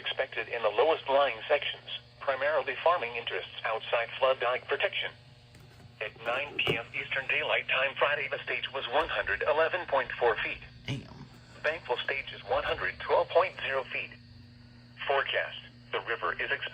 in the lowest-lying sections, primarily farming interests outside flood dike protection. At 9 p.m. Eastern Daylight Time Friday, the stage was 111.4 feet. Damn. Bankful stage is 112.0 feet. Forecast. The river is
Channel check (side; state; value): both; identical; correlation 1.00